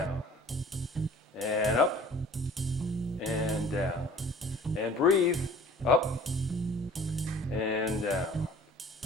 And up. And down. And breathe. Up and down,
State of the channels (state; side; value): normal; both; correlation 0.48